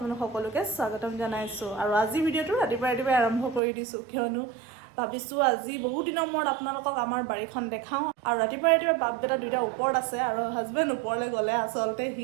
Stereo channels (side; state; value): left; drops out; at 3.6 s